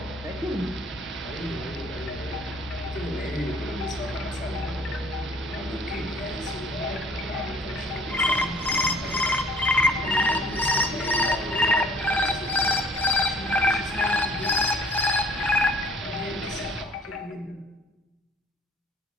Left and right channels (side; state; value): both; normal; correlation 0.53